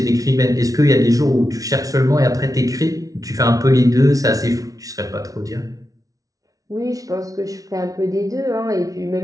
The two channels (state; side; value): late; left; 0.18 ms